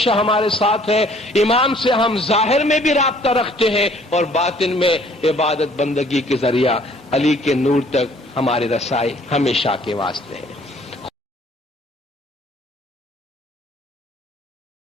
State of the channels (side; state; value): both; normal; correlation 0.58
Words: ہمارے ساتھ ہے. امام سے ہم ظاہر میں بھی رابطہ رکھتے ہیں اور باطن میں عبادت بندگی کے ذریعہ علی کے نور تک ہماری رسائی ہمیشہ کے واسطے ہے.